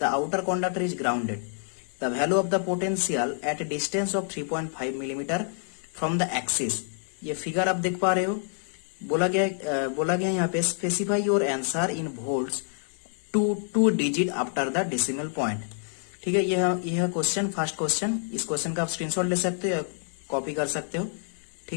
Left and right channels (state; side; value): silent; right; 60 dB below the other